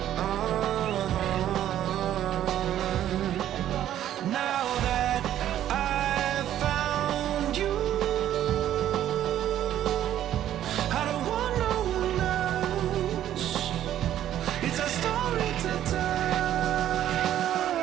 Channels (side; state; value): left; quieter; 11.7 dB